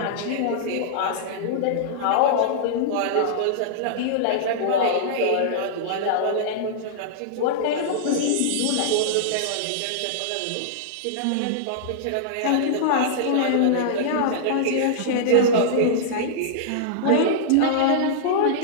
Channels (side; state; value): both; different; correlation -0.02